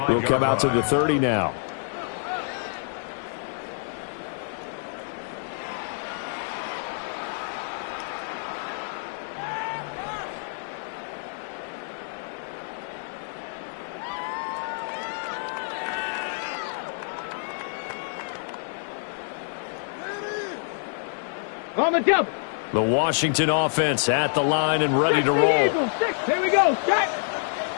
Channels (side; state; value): right; silent; digital silence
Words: will come out to the 30 now. On the double. The Washington offense at the line and ready to 60 roll. Eagles, 6. Here we go. Set.